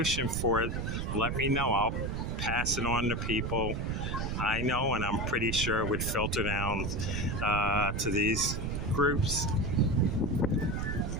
for it, let me know. I'll pass it on to people I know, and I'm pretty sure it would filter down to these groups.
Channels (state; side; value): noise; right; rumble, 2 dB below the sound